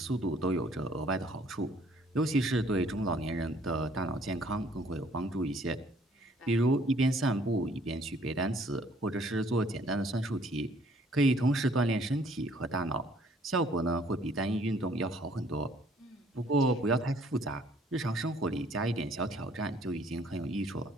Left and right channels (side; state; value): both; normal; correlation 0.60